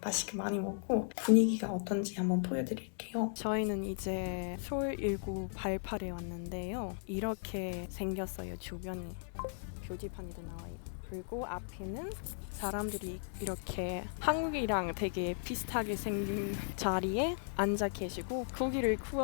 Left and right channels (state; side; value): silent; right; 53 dB below the other